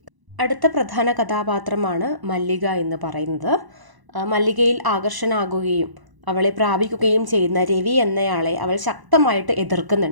അടുത്ത പ്രധാന കഥാപാത്രമാണ് മല്ലിക എന്ന് പറയുന്നത്. മല്ലികയിൽ ആകർഷണാകുകയും അവളെ പ്രാപിക്കുകയും ചെയ്യുന്ന രവി എന്നയാളെ അവൾ ശക്തമായിട്ട്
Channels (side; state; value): left; late; 1.0 ms